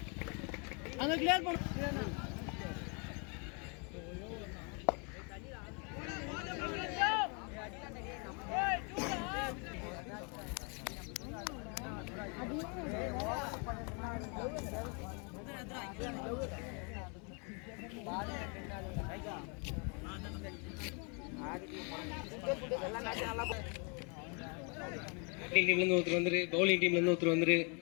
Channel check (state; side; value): quieter; right; 35.4 dB